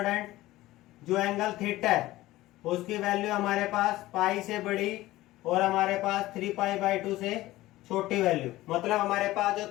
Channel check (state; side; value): quieter; right; 17.0 dB